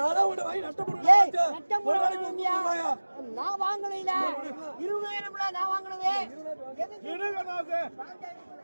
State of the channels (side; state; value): both; inverted; correlation -1.00